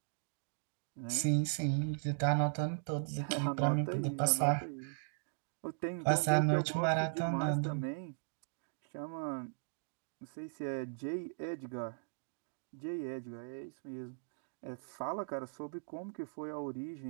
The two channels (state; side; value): silent; left; digital silence